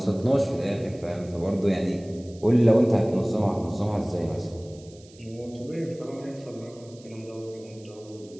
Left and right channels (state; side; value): noise; right; hiss, 25 dB below the sound